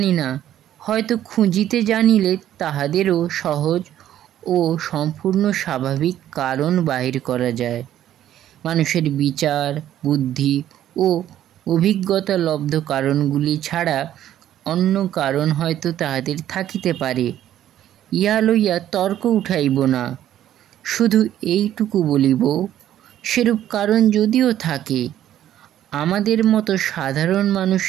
না, হয়তো খুঁজিতে জানিলে তাহাদেরও সহজ ও সম্পূর্ণ স্বাভাবিক কারণ বাহির করা যায়। মানুষের বিচার, বুদ্ধি ও অভিজ্ঞতা লব্ধ কারণগুলি ছাড়া অন্য কারণ হয়তো তাহাদের থাকিতে পারে। ইহা লইয়া তর্ক উঠাইব না, শুধু এইটুকু বলিব, সেরূপ কারণ যদিও থাকে, আমাদের মতো সাধারণ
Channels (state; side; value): quieter; left; 11.8 dB